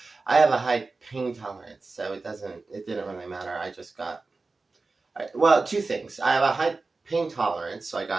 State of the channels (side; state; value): left; quieter; 3.8 dB